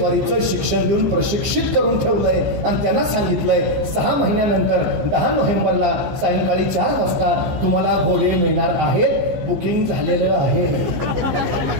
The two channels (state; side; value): late; left; 14 ms